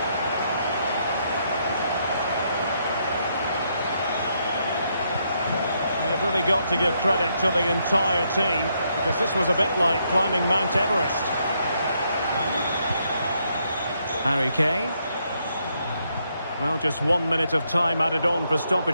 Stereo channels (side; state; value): both; inverted; correlation -0.76